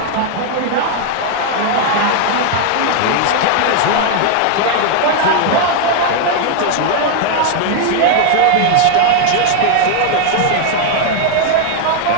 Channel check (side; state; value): both; different; correlation 0.00